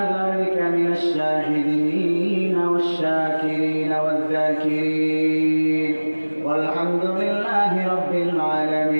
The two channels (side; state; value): both; inverted; correlation -1.00